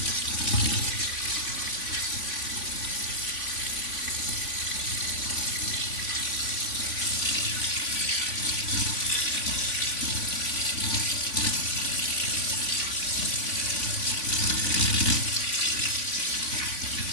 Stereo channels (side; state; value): right; late; 3.5 ms